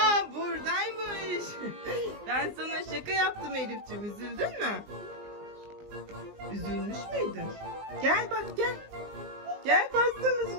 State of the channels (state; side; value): late; left; 19 ms